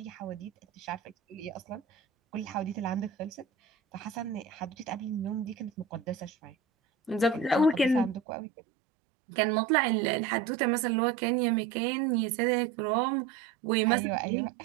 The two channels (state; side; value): drops out; left; at 8.2 s